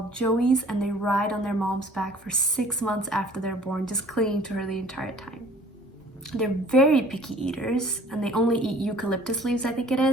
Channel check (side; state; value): both; normal; correlation 0.52